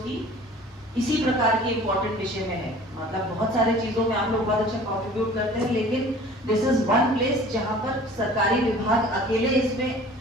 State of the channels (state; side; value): normal; both; correlation 0.46